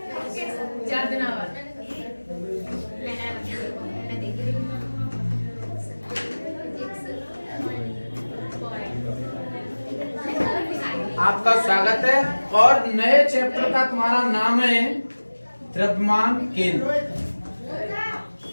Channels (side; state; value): both; inverted; correlation -1.00